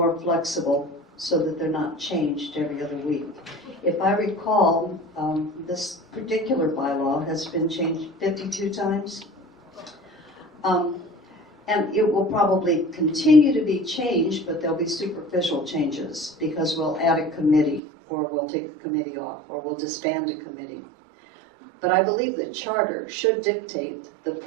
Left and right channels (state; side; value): drops out; left; at 17.8 s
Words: flexible so that they're not changed every other week. If I recall, this particular bylaw has been changed 52 times. And it will probably continue to be changed, but there'll be superficial changes because we'll add a committee, or we'll take a committee off, or we'll disband a committee. But I believe the charter should dictate the